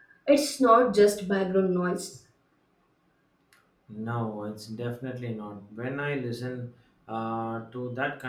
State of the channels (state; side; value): identical; both; correlation 1.00